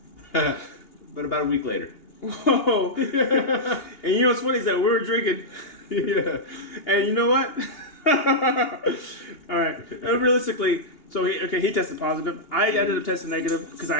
but about a week later. Whoa! And you know what's funny is that we were drinking. Yeah. And you know what? All right. Realistically, so he tested positive. I ended up testing negative because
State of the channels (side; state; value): right; late; 2.8 ms